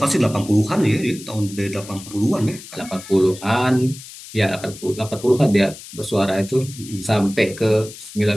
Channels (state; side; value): noise; left; hiss, 16 dB below the sound